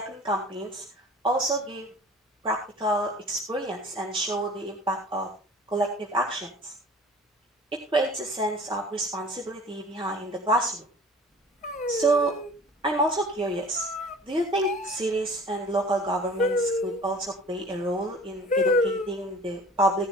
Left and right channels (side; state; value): both; normal; correlation 0.45